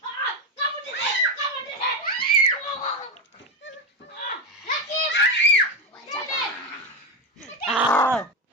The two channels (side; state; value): both; normal; correlation 0.13